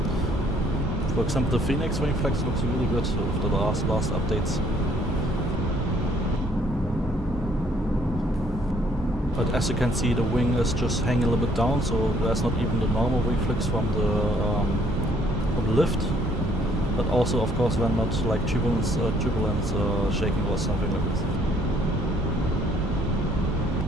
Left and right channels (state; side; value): normal; both; correlation 0.63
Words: For example, the Fenix wing flex looks really good after the last updates. But as you can see, the wing is just hanging a little bit down, so there's not even the normal wing flex from the lift. But also, of course, when not like turbulence shaking or something like this.